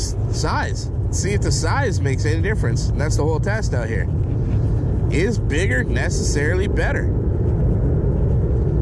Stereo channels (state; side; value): identical; both; correlation 1.00